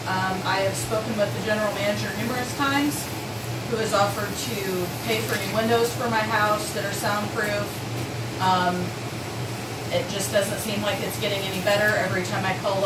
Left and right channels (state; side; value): identical; both; correlation 1.00